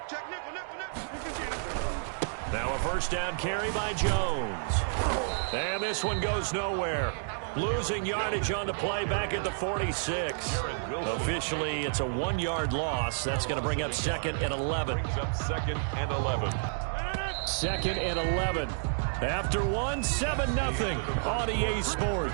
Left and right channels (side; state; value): left; silent; digital silence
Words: Now a 1st down carry by Jones. And this one goes nowhere. Losing yardage on the play back at the 46. Officially, it's a 1-yard loss. That's going to bring up 2nd and 11. Brings up 2nd and 11. 2nd and 11. After 7-0 on EA